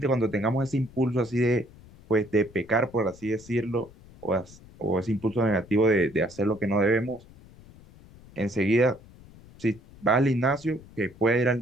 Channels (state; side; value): noise; left; rumble, 22 dB below the sound